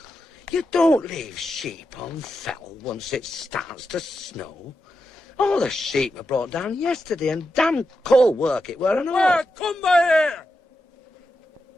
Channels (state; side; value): normal; both; correlation 0.88